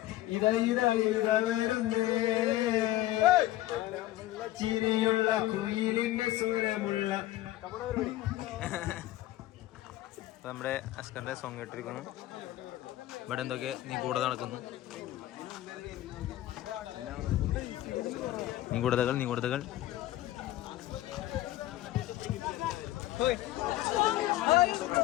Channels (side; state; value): right; quieter; 15.4 dB